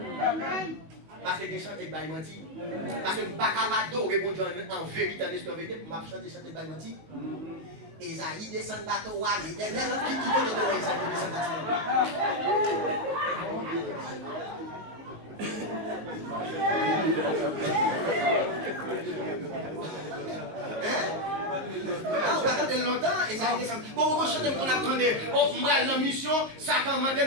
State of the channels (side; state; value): left; late; 19 ms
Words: Amen. Parce que je chante et je menti. Parce que je ne peux pas adorer mon Dieu en vérité, en esprit, en vérité, pour chanter et je menti. Esaïe descend de bateau, l'éternel qui connaît de Esaïe descend de on attend de longtemps et ça descend. Bon, on chante qu'on attendait. On va dans la mission, Satan m'a dit